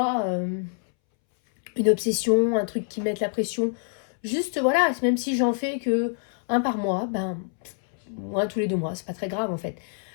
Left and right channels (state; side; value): silent; right; 61 dB below the other